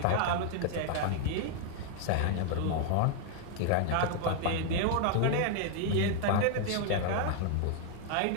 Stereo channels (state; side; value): different; both; correlation 0.00